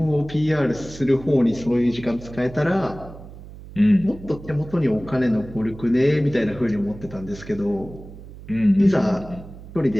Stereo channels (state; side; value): noise; right; hum, 16 dB below the sound